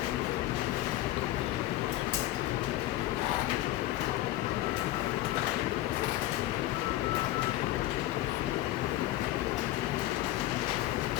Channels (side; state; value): right; quieter; 15.5 dB